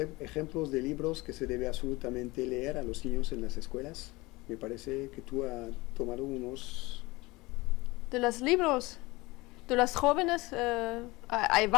de libros que se debe absolutamente leer a los niños en las escuelas? Me parece que tú has tomado unos... De los libros, de los jóvenes, hay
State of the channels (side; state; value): right; quieter; 22.2 dB